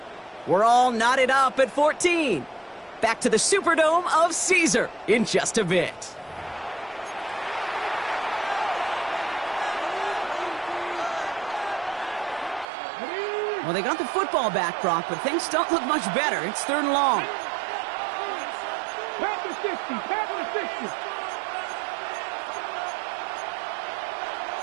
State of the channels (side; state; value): left; drops out; at 12.7 s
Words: We're all knotted up at 14. Back to the Superdome of Caesar in just a bit. Well, they got the football back, Brock, but things don't look much better. It's 3rd and long. Panther 60. Panther 60.